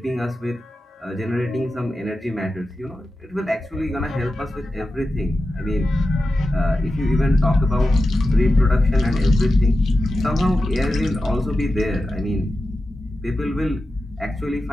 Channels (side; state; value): both; normal; correlation 0.92